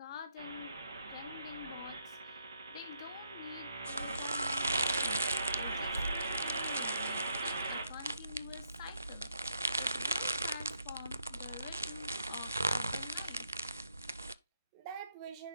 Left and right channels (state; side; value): inverted; both; correlation -0.75